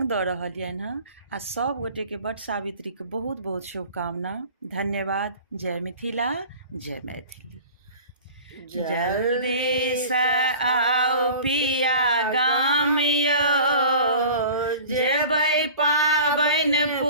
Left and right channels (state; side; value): inverted; both; correlation -0.40